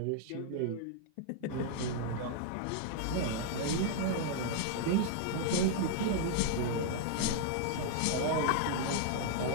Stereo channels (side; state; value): both; different; correlation -0.01